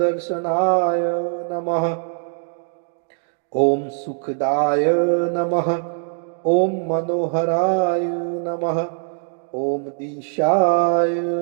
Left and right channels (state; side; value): silent; left; digital silence